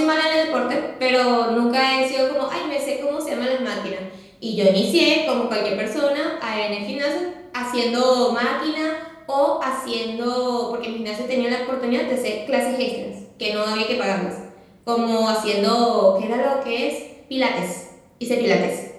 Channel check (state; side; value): identical; both; correlation 1.00